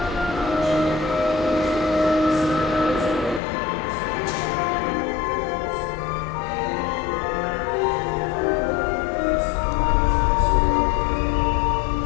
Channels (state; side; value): drops out; right; at 3.4 s